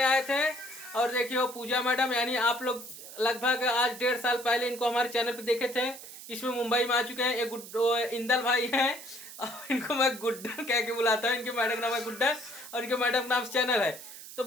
आए थे। और देखिए वो पूजा मैडम, यानी आप लोग लगभग आज 1.5 साल पहले इनको हमारे चैनल पे देखे थे। इसमें मुंबई में आ चुके हैं। एक इंदल भाई हैं और इनको मैं गुड्डन कह के बुलाता हूँ। इनके मैडम का नाम है गुड्डन और इनके मैडम का नाम चैनल है। तो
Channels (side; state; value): right; noise; hiss, 14 dB below the sound